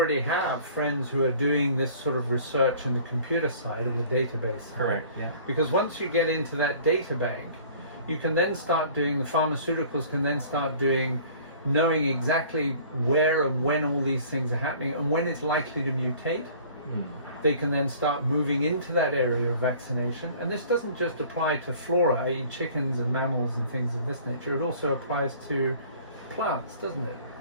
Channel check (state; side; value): inverted; both; correlation -0.49